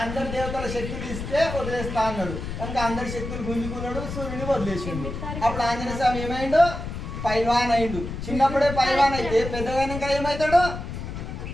అందరి దేవతల శక్తులు ఇస్తే వదిలేస్తా అన్నాడు కనుక అందరి శక్తులు గుంజుకున్నాడు, సూర్యుని వదిలేసిండు. అప్పుడు ఆంజనేయ స్వామి ఏమైండు? పైల్వాన్ అయిండు. చిన్నప్పుడే పైల్వాన్ అయితే పెద్దగైనాక ఏమవుతాడు?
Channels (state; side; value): noise; left; rumble, 7 dB below the sound